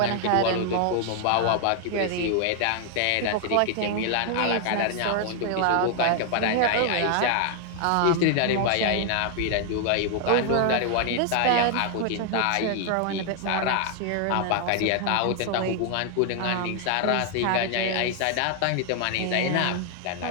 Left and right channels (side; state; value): both; different; correlation 0.00